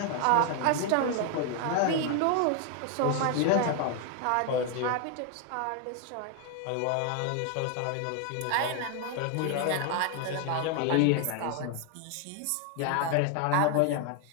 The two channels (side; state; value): both; different; correlation 0.00